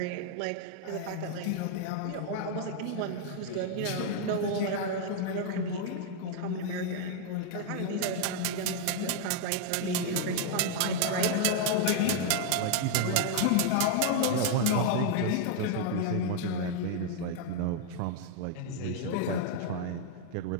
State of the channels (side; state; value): both; different; correlation 0.00